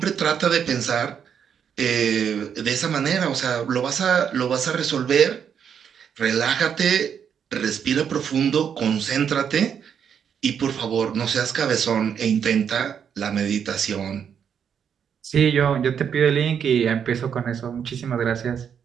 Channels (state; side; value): quieter; left; 7.8 dB